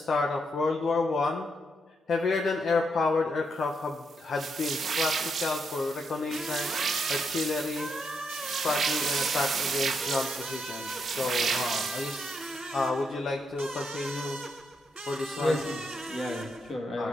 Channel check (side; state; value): both; normal; correlation 0.80